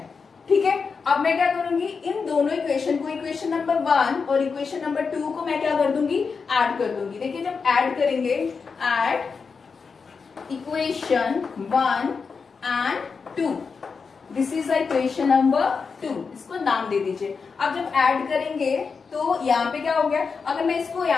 है. ठीक है, अब मैं क्या करूंगी, इन दोनों इक्वेशन को, इक्वेशन नंबर 1 और इक्वेशन नंबर 2 को मैं क्या कर दूंगी? ऐड कर दूंगी. देखिए, जब ऐड करेंगे, add equation 1 and 2, this is equation number 2, इसको नाम दे दीजिए। अब जब ऐड करेंगे तो यहाँ पे क्या हो गया, अगर मैं इसको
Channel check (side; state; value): right; quieter; 5.2 dB